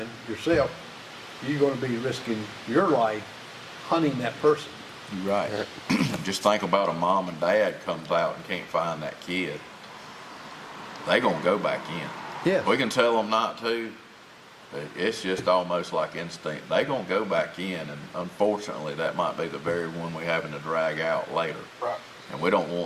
yourself, you're going to be risking your life hunting that person. You're right. Just think about a mom and dad comes out and can't find that kid. They gonna go back in. Yeah. We can tell them not to, but it's just almost like instinct. They gonna go back in, and unfortunately, that might be the very one we're having to drag out later. Right. And we don't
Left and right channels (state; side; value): identical; both; correlation 1.00